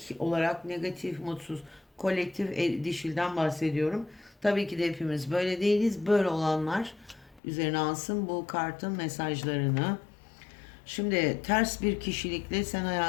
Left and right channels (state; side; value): drops out; right; at 7.4 s